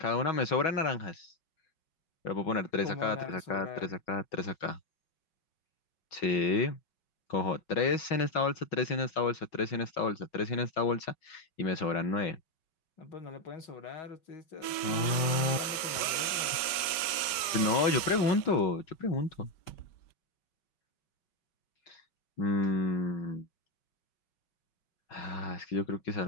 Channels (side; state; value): right; late; 5.1 ms